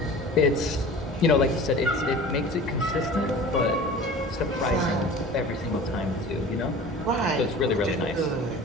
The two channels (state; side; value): normal; both; correlation 0.40